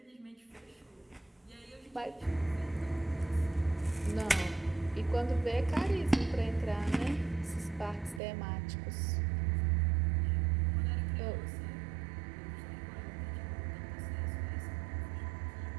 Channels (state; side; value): drops out; left; at 8.2 s